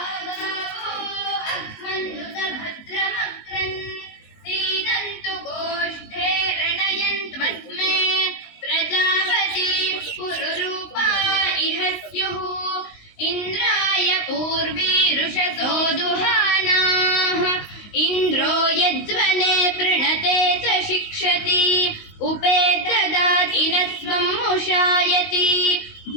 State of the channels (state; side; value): late; right; 19 ms